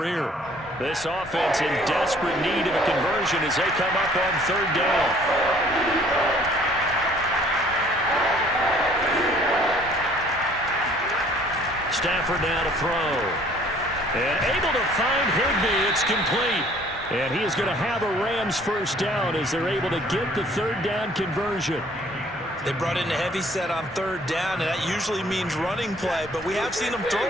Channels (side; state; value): both; normal; correlation 0.57